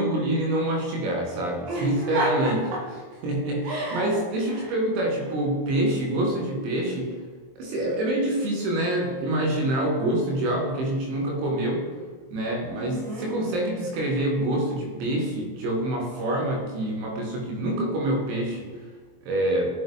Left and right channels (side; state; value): left; late; 23 ms